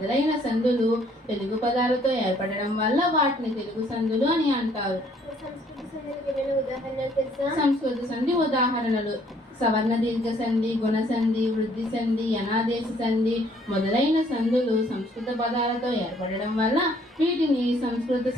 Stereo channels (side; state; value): both; normal; correlation 0.63